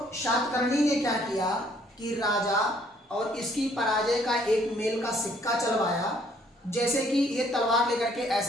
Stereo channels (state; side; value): normal; both; correlation 0.64